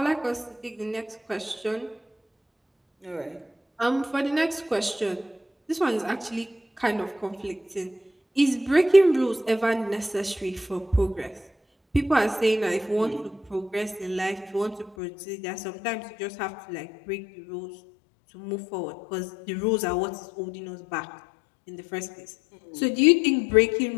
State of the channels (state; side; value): drops out; right; at 15.0 s